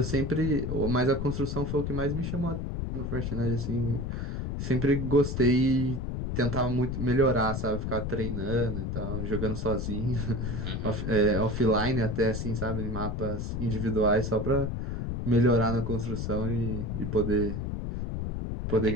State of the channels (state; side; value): noise; left; rumble, 3 dB below the sound